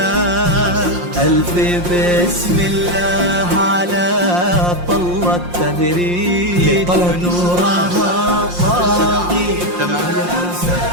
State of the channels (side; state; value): left; late; 5.6 ms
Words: ألف بسم الله على طلة تبريد نورها طاغي